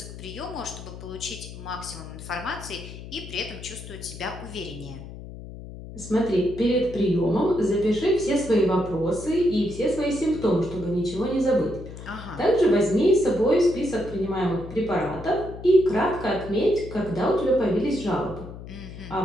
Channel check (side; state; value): left; noise; hum, 13 dB below the sound